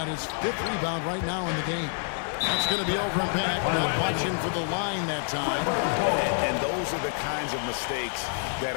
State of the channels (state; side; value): silent; right; 60 dB below the other